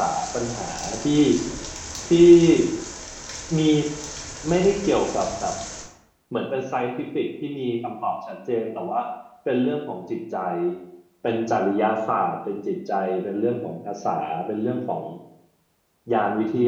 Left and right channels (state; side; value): identical; both; correlation 1.00